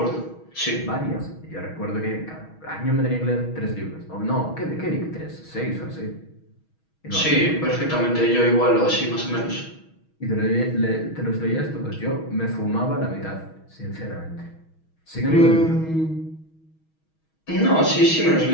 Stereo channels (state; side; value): late; right; 6.3 ms